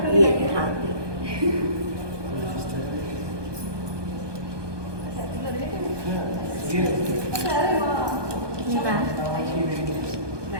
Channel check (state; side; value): late; left; 1.2 ms